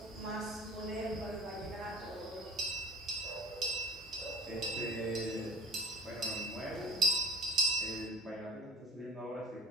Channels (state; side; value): normal; both; correlation 0.45